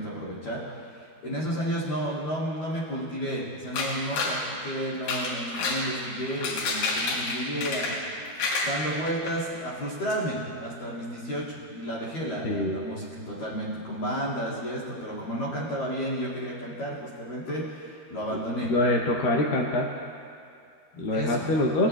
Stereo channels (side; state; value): right; late; 13 ms